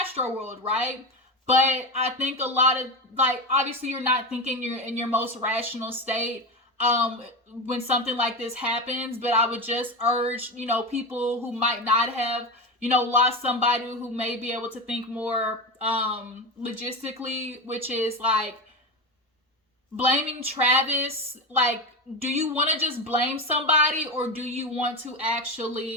right? But I think a lot of, like, obviously you're not thinking you're in your most rational state when something like this happens. But I would just urge, you know, people who might not have, you know, lost somebody, who may be able to think more logistically, which is like blaming Travis. Like, do you want to just blame somebody, or do you want to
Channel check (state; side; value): normal; both; correlation 0.20